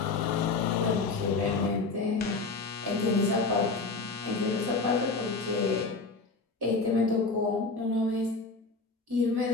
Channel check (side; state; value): right; quieter; 4.0 dB